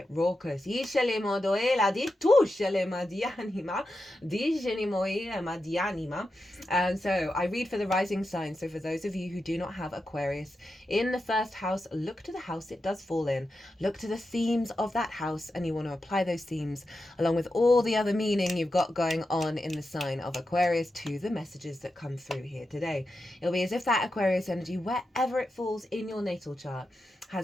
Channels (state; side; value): normal; both; correlation 0.89